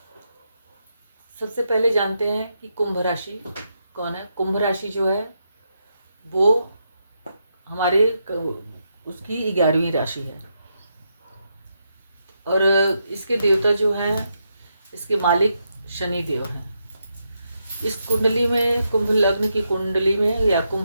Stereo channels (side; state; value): both; inverted; correlation -0.82